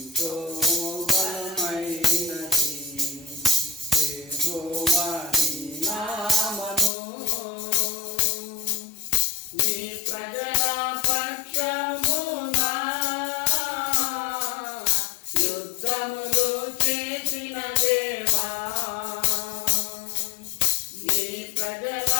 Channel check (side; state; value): right; drops out; at 6.9 s